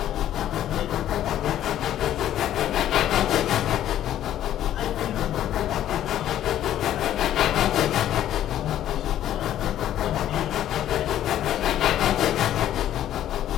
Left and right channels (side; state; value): right; quieter; 11.9 dB